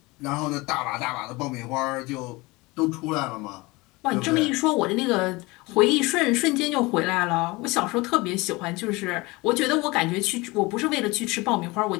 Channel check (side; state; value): right; quieter; 23.3 dB